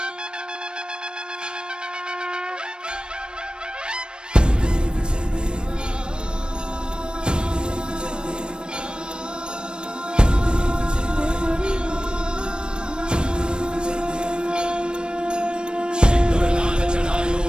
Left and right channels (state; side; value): late; left; 0.053 ms